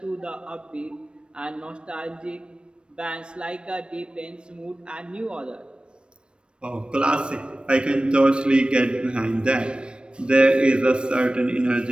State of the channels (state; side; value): late; left; 0.056 ms